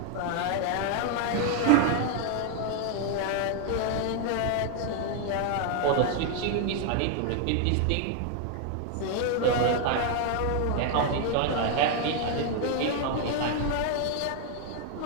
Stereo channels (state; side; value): different; both; correlation 0.00